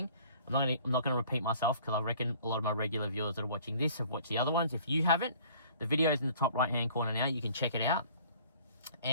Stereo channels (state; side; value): inverted; both; correlation -0.53